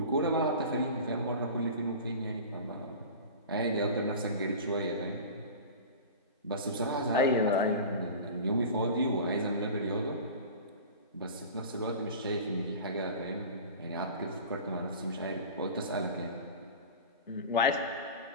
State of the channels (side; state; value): both; inverted; correlation -0.34